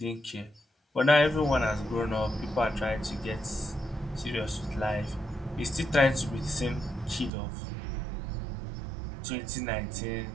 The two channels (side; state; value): left; drops out; at 7.3 s